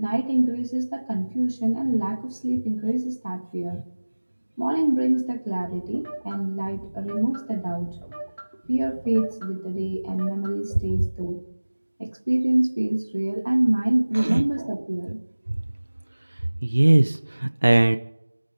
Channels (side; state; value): both; inverted; correlation -1.00